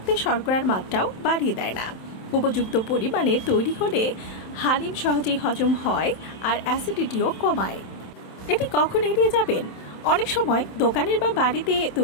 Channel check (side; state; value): right; late; 27 ms